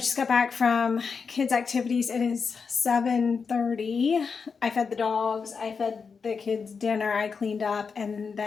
got back from kids' activities. It is 7:30. I fed the dogs, I fed the kids dinner, I cleaned up, and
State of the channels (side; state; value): right; quieter; 5.5 dB